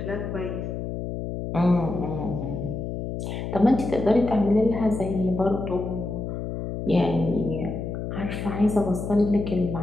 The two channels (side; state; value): left; noise; hum, 5 dB below the sound